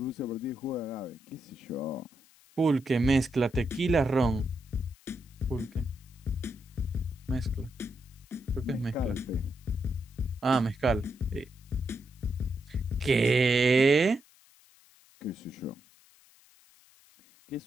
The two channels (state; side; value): noise; left; hiss, 28 dB below the sound